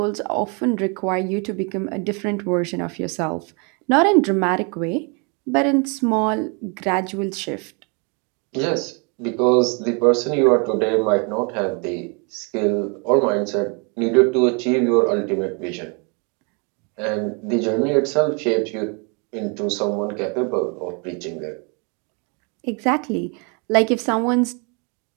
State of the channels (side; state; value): left; quieter; 34.2 dB